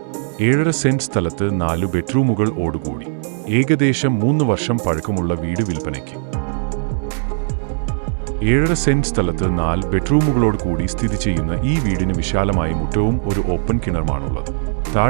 7.5 സെന്റ് സ്ഥലത്ത് 4 ബെഡ്റൂമുകൾ ഓടുകൂടി. ഏകദേശം 3 വർഷം പഴക്കമുള്ള വീട് വിൽപ്പനയ്ക്ക്. 7.5 സെന്റ് സ്ഥലത്ത് 4 ബെഡ്റൂമുകളോട് കൂടി സ്ഥിതി ചെയ്യുന്ന ഈ വീടിന് വിശാലമായ മുറ്റവും ഒരു ഓപ്പൺ കിണറുമാണുള്ളത്.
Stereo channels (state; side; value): silent; left; 61 dB below the other